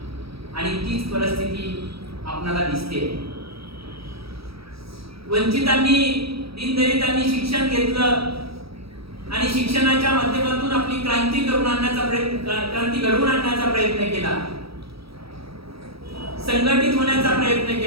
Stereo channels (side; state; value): left; late; 0.76 ms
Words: आणि तीच परिस्थिती आपल्याला दिसते. वंचितांनी, दीनदलितांनी शिक्षण घेतलं आणि शिक्षणाच्या माध्यमातून आपली क्रांती घडवून आणण्याचा प्रयत्न केला, संघटित होण्याचा प्रयत्न